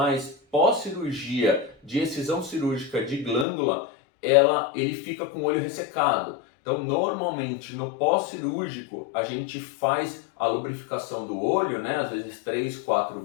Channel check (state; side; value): drops out; right; at 3.5 s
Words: pós-cirurgia de excisão cirúrgica de glândula, ele fica com o olho ressecado. Então, normalmente, no pós-cirúrgico, a gente faz a lubrificação do olho, né? Às vezes 3, 4